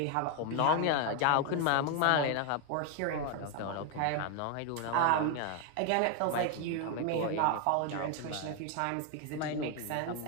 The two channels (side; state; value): both; different; correlation 0.01